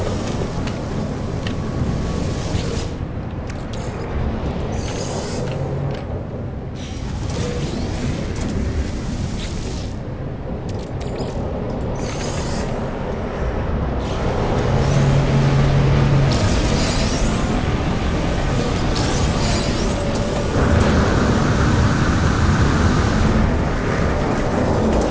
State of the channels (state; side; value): identical; both; correlation 1.00